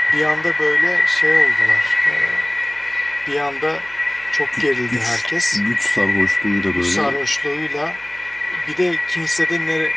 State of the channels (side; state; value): right; noise; hum, 26 dB below the sound